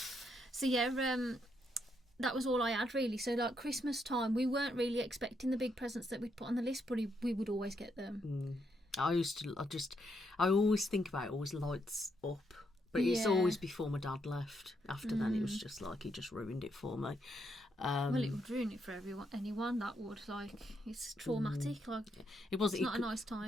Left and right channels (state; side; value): normal; both; correlation 0.77